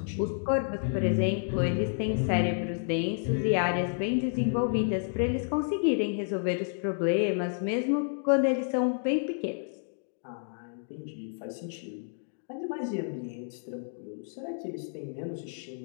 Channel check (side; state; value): right; silent; digital silence